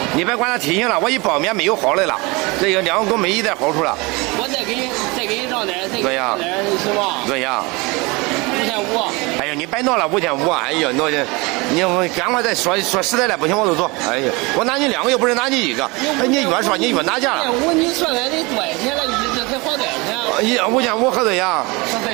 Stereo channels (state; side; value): quieter; left; 25.6 dB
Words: 你别管它体型了，我一包面没有好的了，这个两个都没一点好处了。我再给你让点，对呀，行吗？对呀。5500。哎呀，你别闹了5500，哎呀，你赶快再说实在的，不行我就走。哎呀，我拿你两个又不是拿你一个，哎，你越说你越拿价了。你算来得多少钱了？一直才花多少钱？5500合多少呀？合多少